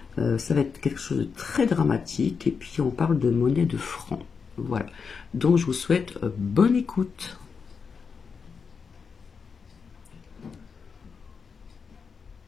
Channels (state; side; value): quieter; right; 5.6 dB